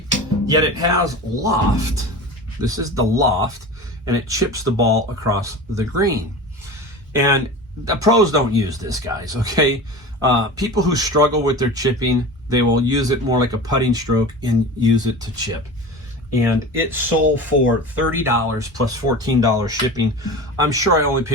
Yet it has loft. This is the loft, and it chips the ball across the green. And the pros don't use this, guys, okay? People who struggle with their chipping, they will use it more like a putting stroke and use it to chip. And it sold for $30 plus $14 shipping. I'm sure I only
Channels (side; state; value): both; normal; correlation 0.32